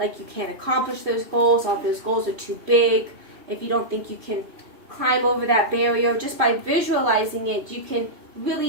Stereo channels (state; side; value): late; left; 2.9 ms